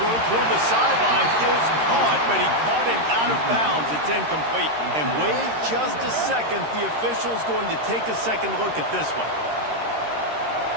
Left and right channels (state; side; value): late; left; 13 ms